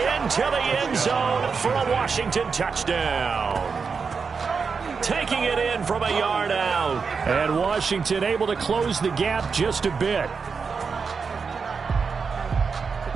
the end zone for a Washington touchdown. Taking it in from a yard out. And Washington able to close the gap just a bit.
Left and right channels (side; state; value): left; quieter; 5.4 dB